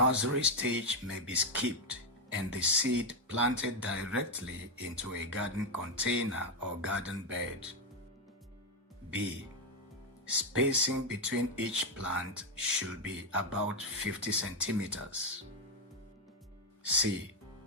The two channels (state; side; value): normal; both; correlation 0.03